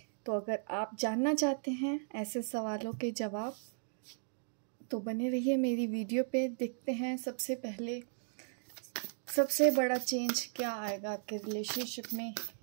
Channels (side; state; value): left; silent; digital silence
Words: तो अगर आप जानना चाहते हैं ऐसे सवालों के जवाब तो बने रहिए मेरी वीडियो पे। देखते हैं सबसे पहले सबसे बड़ा चेंज क्या आएगा आपके रिलेशनशिप में